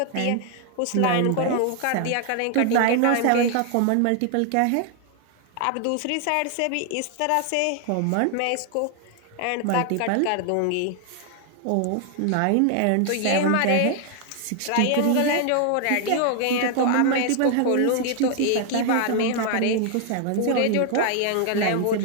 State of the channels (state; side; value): different; both; correlation 0.00